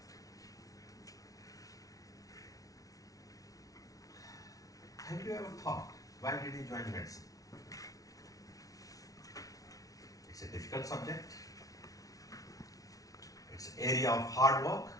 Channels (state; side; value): late; right; 0.18 ms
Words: Have you ever thought, why did you join medicine? It's a difficult subject. It's an area of hard work.